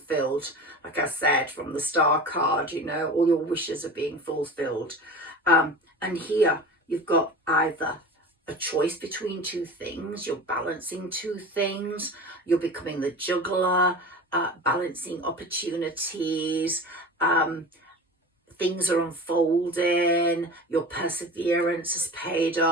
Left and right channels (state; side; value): normal; both; correlation 0.34